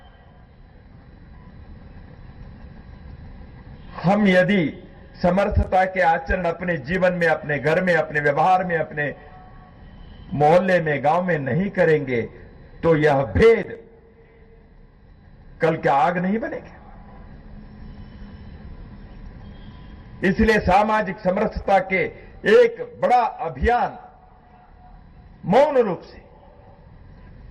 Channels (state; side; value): identical; both; correlation 1.00